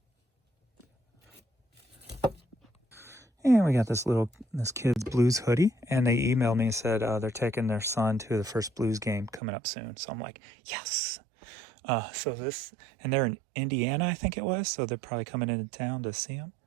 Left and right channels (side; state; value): left; drops out; at 9.4 s